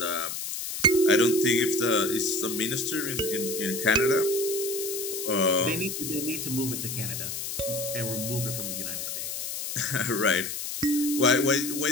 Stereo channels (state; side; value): noise; left; hiss, 5 dB below the sound